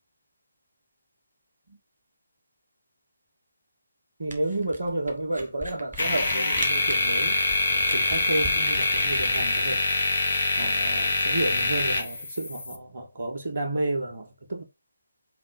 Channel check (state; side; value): inverted; both; correlation -0.83